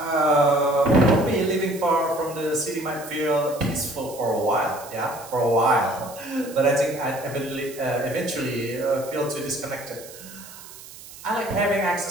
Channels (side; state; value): right; noise; hiss, 17 dB below the sound